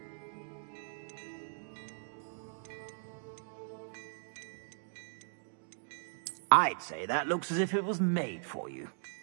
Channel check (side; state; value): left; silent; digital silence